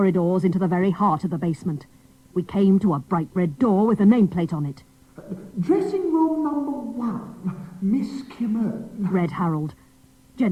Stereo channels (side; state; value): both; identical; correlation 1.00